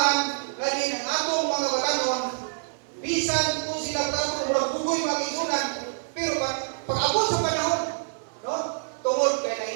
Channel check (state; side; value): silent; left; digital silence